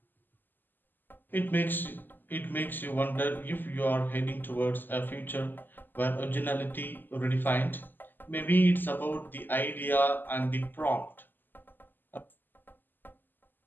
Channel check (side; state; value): right; late; 0.091 ms